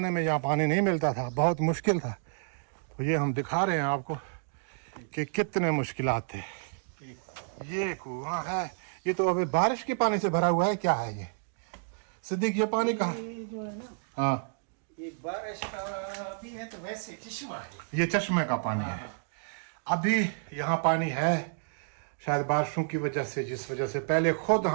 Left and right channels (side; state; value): left; silent; digital silence